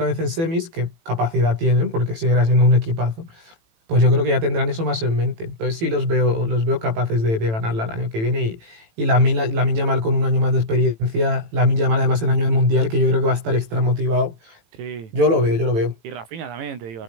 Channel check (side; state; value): left; late; 18 ms